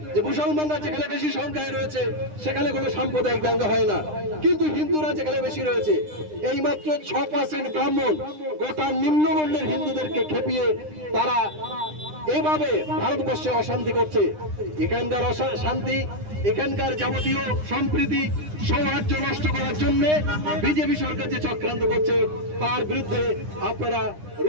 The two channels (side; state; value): left; late; 9.8 ms